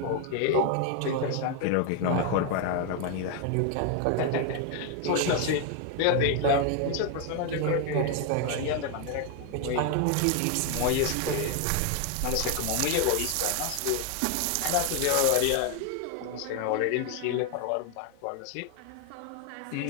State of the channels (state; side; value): different; both; correlation 0.01